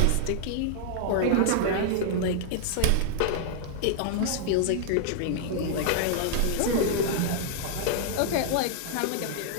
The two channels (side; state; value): both; different; correlation 0.00